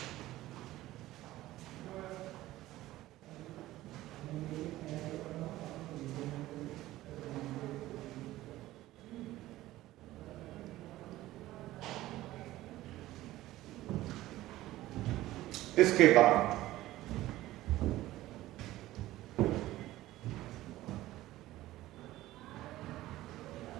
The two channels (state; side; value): quieter; left; 16.1 dB